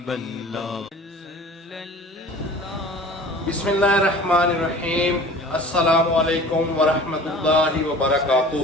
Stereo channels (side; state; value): both; normal; correlation 0.43